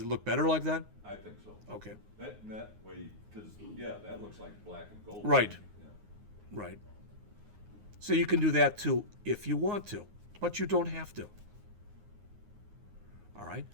look better like that? I think so. Okay. That way, because, yeah, that looks like black and gold. Right. Yeah. Right. So you can do that too if you want to, but you don't have to. All right.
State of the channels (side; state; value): left; late; 9.6 ms